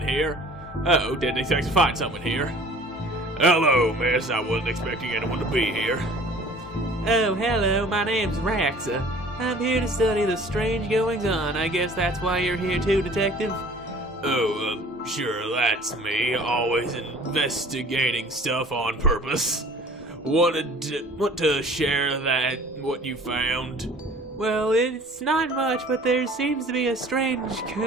here. Oh, didn't expect to find someone here. Hello, miss. I wasn't expecting anyone to be here. Oh, hello. My name's Raxa. I'm here to study the strange goings-on. I guess that's why you're here too, Detective. Oh, sure, that's me. Always investigating stuff on purpose. Want to share what you found? Well, it's not much, but there seems to be a strange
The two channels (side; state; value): both; normal; correlation 0.48